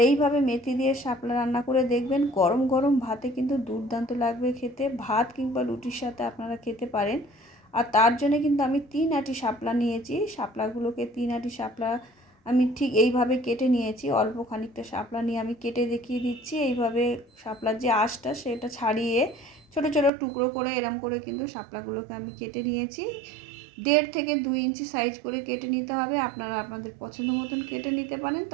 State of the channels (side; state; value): left; drops out; at 20.1 s